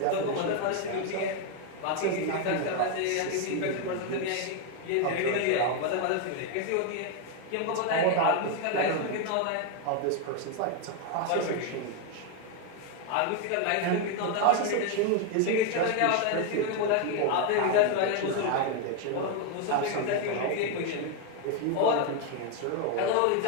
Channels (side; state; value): both; different; correlation 0.01